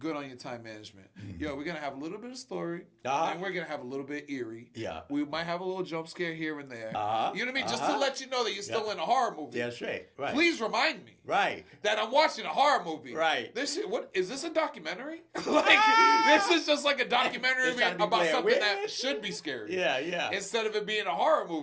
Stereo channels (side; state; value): both; identical; correlation 1.00